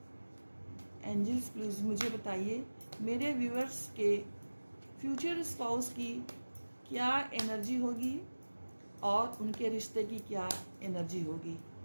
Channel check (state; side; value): inverted; both; correlation -1.00